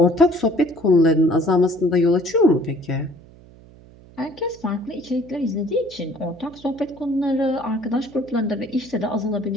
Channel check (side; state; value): right; noise; hum, 23 dB below the sound